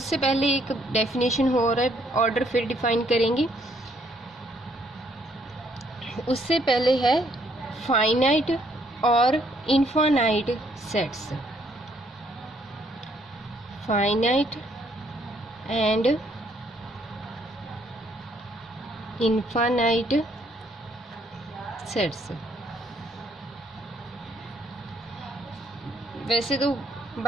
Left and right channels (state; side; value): normal; both; correlation 0.68